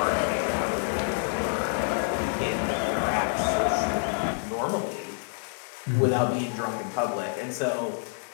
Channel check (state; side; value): silent; right; digital silence